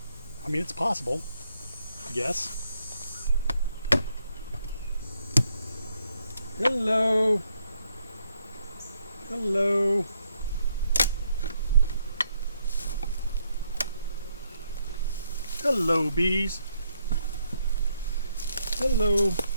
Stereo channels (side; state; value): both; inverted; correlation -0.75